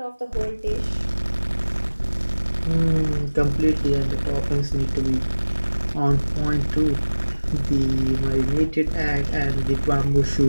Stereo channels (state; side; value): inverted; both; correlation -1.00